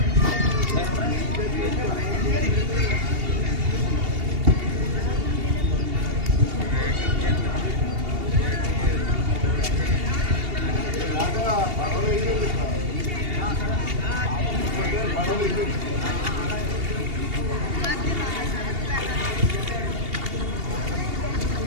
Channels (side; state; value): left; late; 2.8 ms